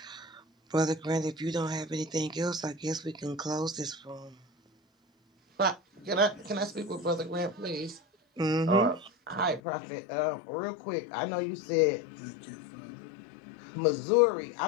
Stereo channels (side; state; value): right; drops out; at 9.6 s